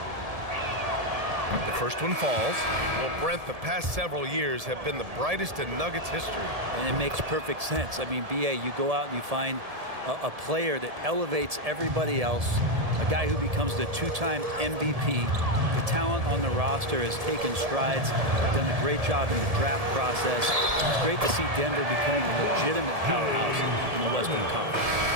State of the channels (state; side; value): late; left; 1.7 ms